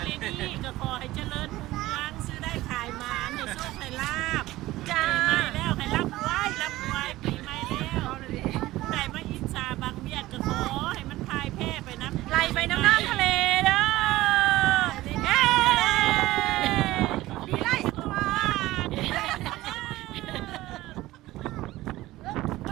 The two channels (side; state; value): left; quieter; 17.1 dB